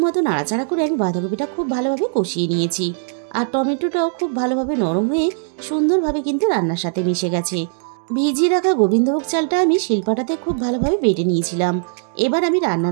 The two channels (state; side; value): silent; left; digital silence